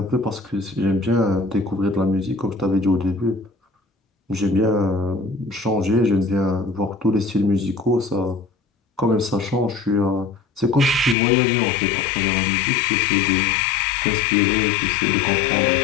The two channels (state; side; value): drops out; right; at 11.2 s